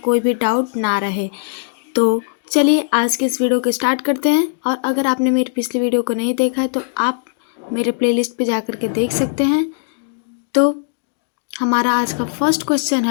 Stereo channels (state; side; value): silent; right; digital silence